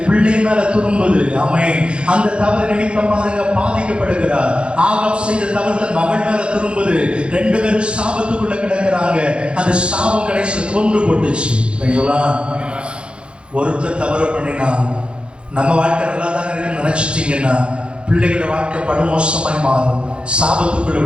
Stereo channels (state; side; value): late; left; 0.056 ms